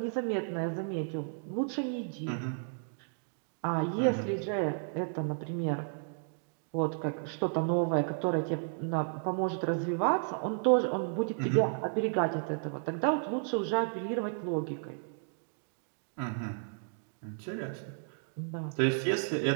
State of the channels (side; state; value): left; silent; digital silence